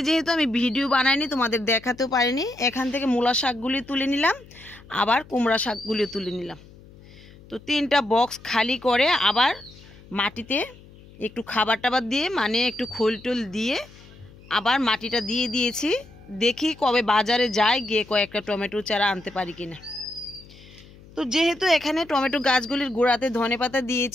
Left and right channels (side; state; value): left; noise; hum, 22 dB below the sound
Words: যেহেতু আমি ভিডিও বানাইনি, তোমাদের দেখাতেও পারিনি, এখান থেকে মূলা শাকগুলি তুলে নিলাম, আবার কুমড়া শাকগুলিও তুলে নিলাম। তো 3টা বক্স খালি করে আবার মাটিতে একটু খাবার টাবার দিয়ে, মানে একটু খোল টোল দিয়ে আবার মাটিটা দিয়ে দিয়েছি। দেখি কবে বাজারে যাই, গিয়ে কয়েকটা টমেটো চারা আনতে পারি কিনা। তো যেহেতু এখানে টমেটো গাছগুলির গোড়াতে ধনেপাতা